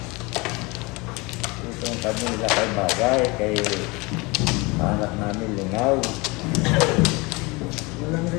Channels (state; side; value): quieter; right; 25.4 dB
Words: Itong kami nila kay bagay, kay anak namin lingaw. Walang